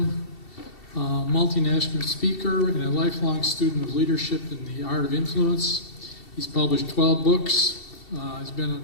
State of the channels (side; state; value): right; late; 2.7 ms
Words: multinational speaker, and a lifelong student of leadership and the art of influence. He's published 12 books. He's been on